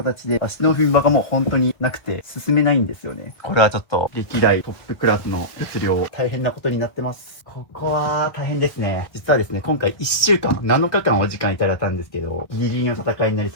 で足の踏み場がもう本当になくて進めないんですよね。これはちょっと歴代トップクラスの物量、大変なことになってます。ここは大変ですね。実はですね、今回1週間、7日間お時間いただいたんですけど、ギリギリの戦いになり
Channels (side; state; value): right; late; 1.4 ms